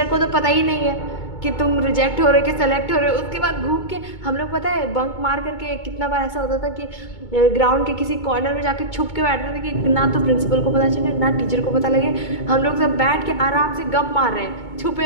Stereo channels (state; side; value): late; right; 2.2 ms